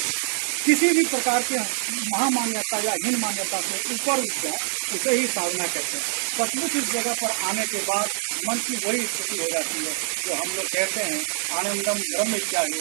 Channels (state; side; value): silent; left; digital silence